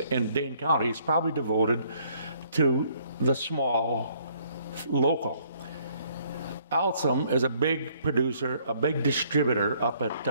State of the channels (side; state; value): both; inverted; correlation -0.65